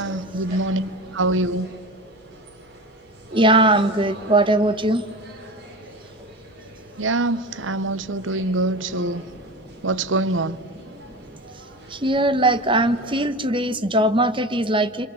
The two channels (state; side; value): normal; both; correlation 0.29